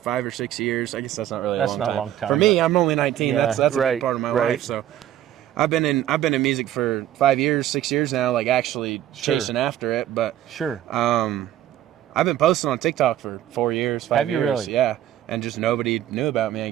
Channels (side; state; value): left; quieter; 12.0 dB